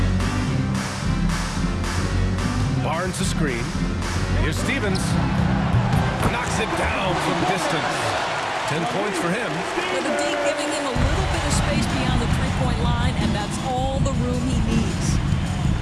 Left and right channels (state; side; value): identical; both; correlation 1.00